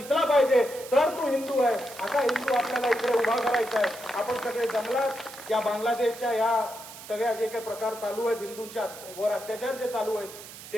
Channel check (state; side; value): noise; right; hiss, 15 dB below the sound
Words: पाहिजे तर तू हिंदू आहे. असा हिंदू आपल्याला इकडे उभा करायचा आहे. आपण सगळे जंगलात या बांगलादेशच्या या सगळ्या जे काही प्रकार चालू आहेत, हिंदूंच्या वर अत्याचार जे चालू आहेत